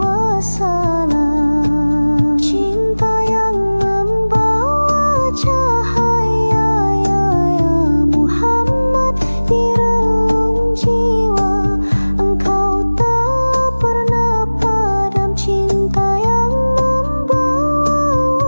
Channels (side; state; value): both; inverted; correlation -1.00